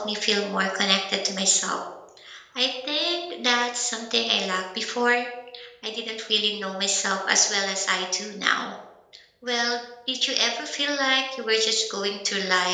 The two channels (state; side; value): identical; both; correlation 1.00